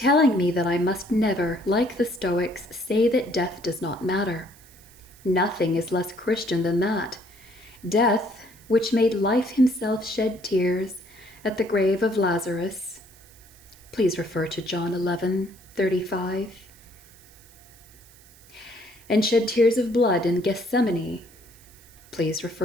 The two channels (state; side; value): noise; right; hiss, 25 dB below the sound